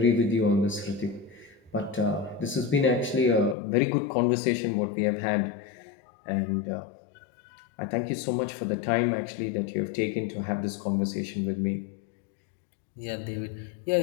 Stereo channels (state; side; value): drops out; right; at 3.6 s